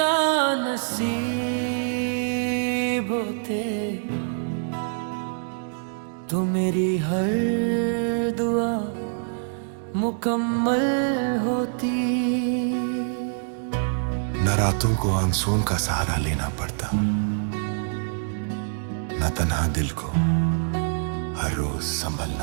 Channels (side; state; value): left; silent; digital silence